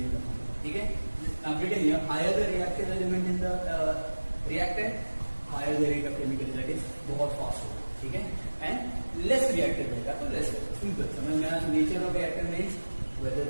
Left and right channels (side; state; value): both; inverted; correlation -1.00